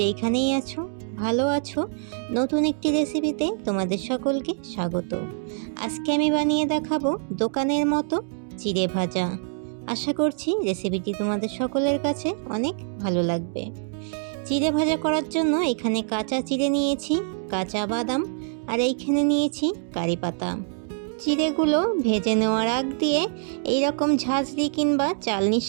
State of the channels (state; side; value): silent; left; digital silence